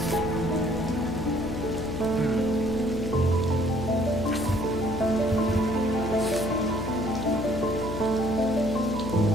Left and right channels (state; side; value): noise; left; hum, 7 dB below the sound